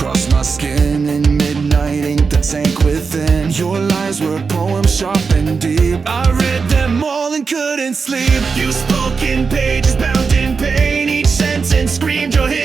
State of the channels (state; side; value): quieter; left; 5.1 dB